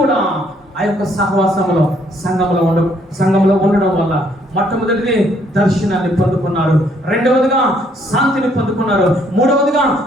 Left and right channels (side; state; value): both; normal; correlation 0.67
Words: ఆ యొక్క సహవాసంలో సంఘంలో ఉండడం వల్ల మొట్టమొదటిది దర్శనాన్ని పొందుకున్నారు, రెండవదిగా శాంతిని పొందుకున్నారు, మూడవదిగా